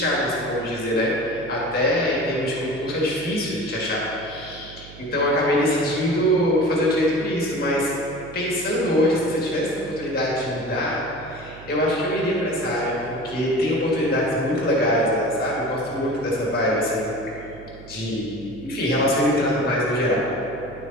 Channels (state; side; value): noise; right; hum, 18 dB below the sound